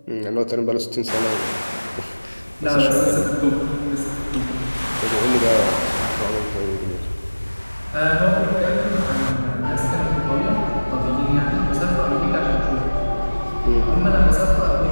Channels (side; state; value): both; inverted; correlation -1.00